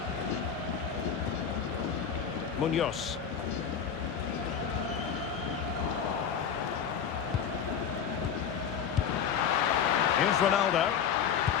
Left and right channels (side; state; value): right; quieter; 7.6 dB